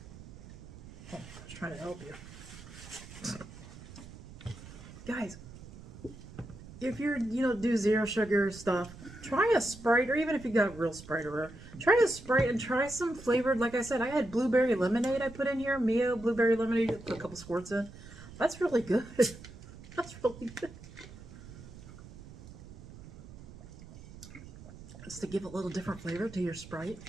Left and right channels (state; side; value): noise; right; rumble, 16 dB below the sound